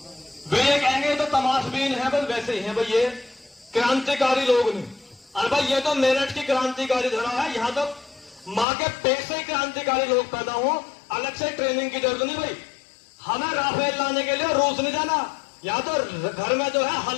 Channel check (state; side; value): drops out; right; at 8.7 s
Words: वे ये कहेंगे तो तमाशबीन है, बस वैसे ही है भाई, ये क्रांतिकारी लोग नहीं। अरे भाई, ये तो मेरठ की क्रांतिकारी धरा है, यहाँ तो माँ के पेट से क्रांतिकारी लोग पैदा हो, अलग से ट्रेनिंग की जरूरत नहीं भाई। हमें राफेल लाने के लिए रूस नहीं जाना, यहाँ तो घर में जो है